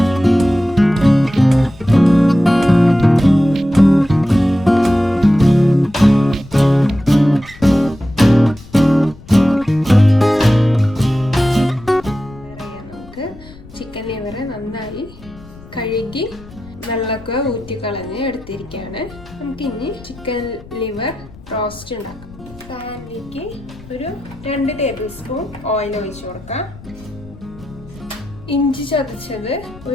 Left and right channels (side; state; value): left; noise; rumble, 20 dB below the sound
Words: ചിക്കൻ ലിവർ നന്നായി കഴുകി വെള്ളമൊക്കെ ഊറ്റിക്കളഞ്ഞ് എടുത്തിരിക്കുകയാണ്. നമുക്കിനി ചിക്കൻ ലിവർ റോസ്റ്റ് ഉണ്ടാക്കാം. പാനിലേക്ക് ഒരു 2 ടേബിൾ സ്പൂൺ ഓയിൽ ഒഴിച്ചു കൊടുക്കാം. ഇഞ്ചി ചതച്ചത്